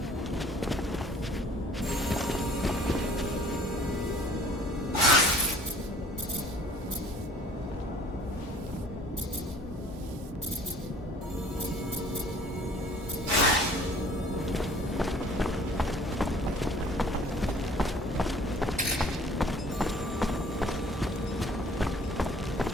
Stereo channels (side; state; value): both; normal; correlation 0.52